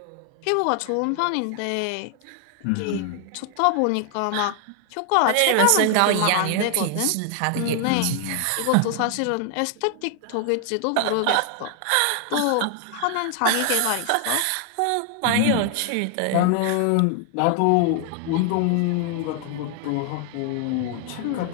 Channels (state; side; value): different; both; correlation 0.00